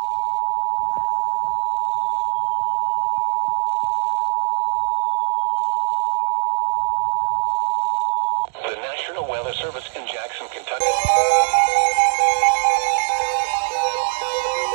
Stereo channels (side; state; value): left; silent; digital silence